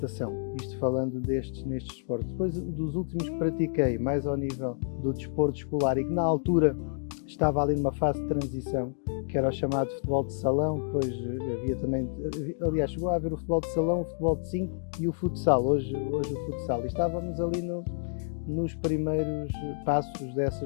isto falando nestes desportos. Depois dos últimos que pratiquei, mais ao nível do desporto escolar, e que na altura estava ali numa fase de transição, que era o chamado futebol de salão, depois havia também, aliás, chegou a haver o futebol de salão, o futebol de 5 e o futsal, hoje o futsal, e estávamos ali nos primeiros passos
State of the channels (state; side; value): silent; right; digital silence